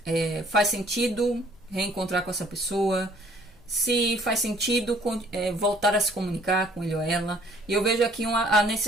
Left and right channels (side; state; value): both; normal; correlation 0.59